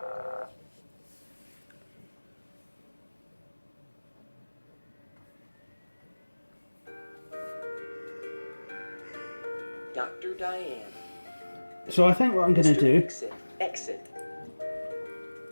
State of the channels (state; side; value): inverted; both; correlation -1.00